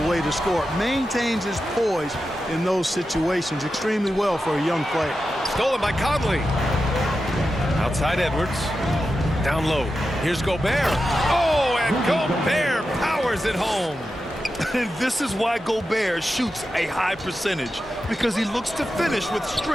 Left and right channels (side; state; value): both; normal; correlation 0.90